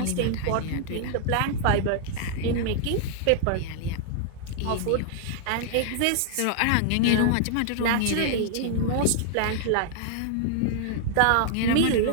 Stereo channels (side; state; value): both; different; correlation -0.01